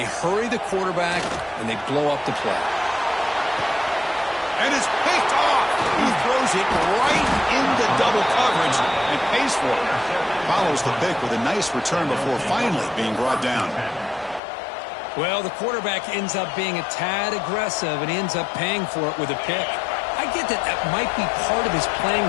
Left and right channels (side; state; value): right; drops out; at 14.4 s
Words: hurry the quarterback, and they blow up the play. And it's picked off. He throws it right into double coverage and pays for it. Follows the pick with a nice return before finally being brought down. Well, the quarterback ends up being a tad aggressive and ends up paying for it with a pick. I get that that might be part of his playing